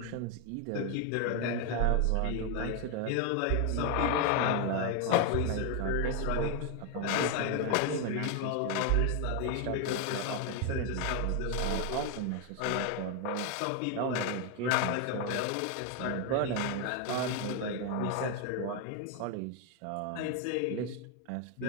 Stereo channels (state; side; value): different; both; correlation 0.01